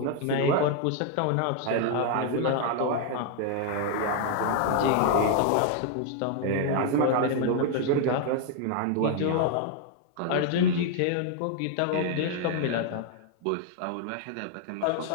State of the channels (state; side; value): different; both; correlation 0.00